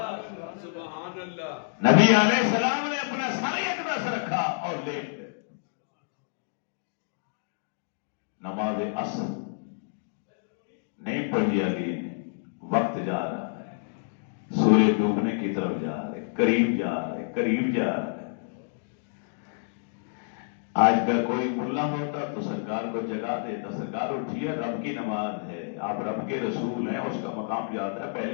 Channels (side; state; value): right; silent; digital silence